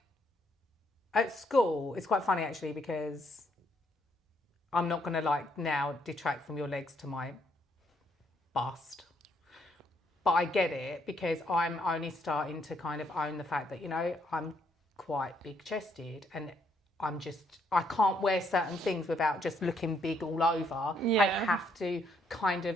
at school, it's quite funny actually because I'm not gonna like now detract from your legs to my bust, but I get it because I'm only starting to kind of own the fact that I'm quite big chested and I can't wear certain things without just looking big all over. Yeah. I have to kind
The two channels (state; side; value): normal; both; correlation 0.72